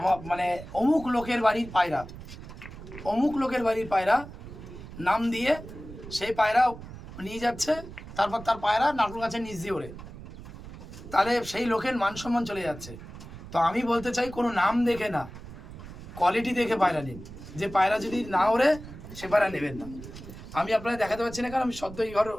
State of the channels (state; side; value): noise; right; rumble, 14 dB below the sound